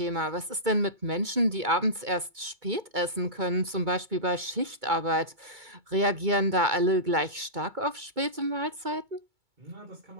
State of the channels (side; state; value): left; late; 2.2 ms